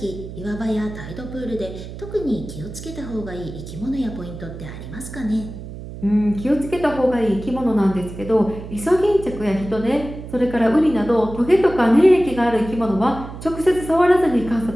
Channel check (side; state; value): right; noise; hum, 11 dB below the sound